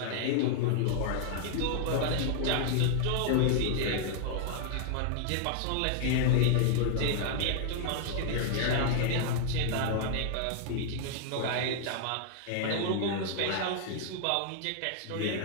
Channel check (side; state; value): both; different; correlation 0.00